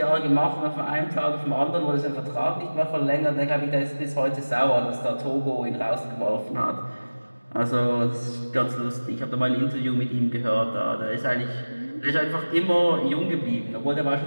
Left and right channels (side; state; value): both; inverted; correlation -1.00